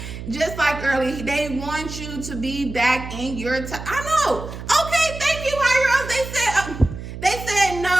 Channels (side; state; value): right; noise; hum, 10 dB below the sound